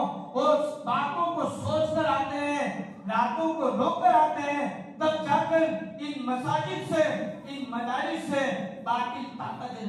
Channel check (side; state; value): both; identical; correlation 1.00